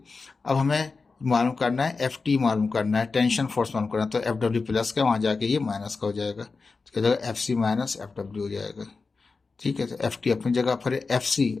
अब हमें मालूम करना है एफ टी मालूम करना है, टेंशन फोर्स मालूम करना है, तो एफ डब्ल्यू प्लस का वहाँ जाके ये माइनस का हो जाएगा, तो क्या जाएगा F C minus F W हो जाएगा, ठीक है। तो एफ टी अपनी जगह पर, एफ सी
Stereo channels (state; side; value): quieter; right; 4.3 dB